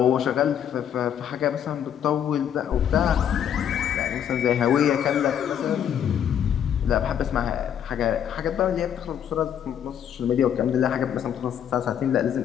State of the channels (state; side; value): quieter; right; 9.2 dB